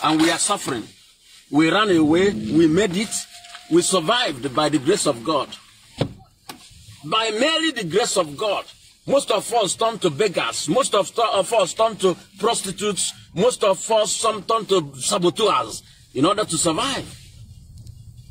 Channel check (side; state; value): both; identical; correlation 1.00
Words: And we are suffering. We ran away. We made it. We survived by the grace of God. By merely the grace of God. Most of us turned to beggars. Most of us turned to prostitutes. Most of us turned to saboteurs in order to survive.